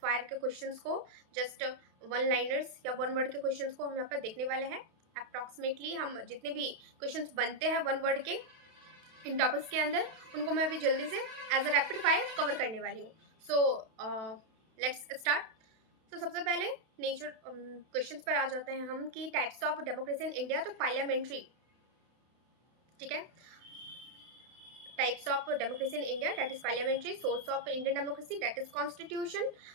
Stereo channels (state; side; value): late; left; 32 ms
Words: फायर के क्वेश्चंस को, जस्ट वन लाइनर्स या वन वर्ड के क्वेश्चंस को हम यहाँ पर देखने वाले हैं। अप्रॉक्सीमेटली हम जितने भी क्वेश्चंस बनते हैं वन वर्ड के इन टॉपिक्स के अंदर, उनको मैं भी जल्दी से as a rapid fire cover करने वाली हूँ। So let's start. तो सबसे पहले नेचर क्वेश्चंस पर आ जाते हैं हम कि types of democracy in India. तो पार्लियामेंट्री, ठीक है। Types of democracy in India, that is parliamentary. Source of Indian democracy, that is constitution.